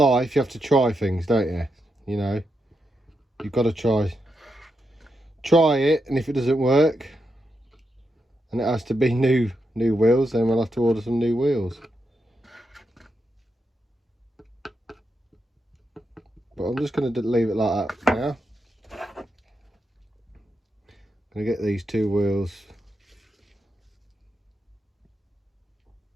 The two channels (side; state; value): both; normal; correlation 0.84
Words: you have to try things, don't you? You know, you've got to try try it, and if it doesn't work and it has to be new wheels, then we'll have to order some new wheels. But I'm just going to leave it like that now. I'm going to get these two wheels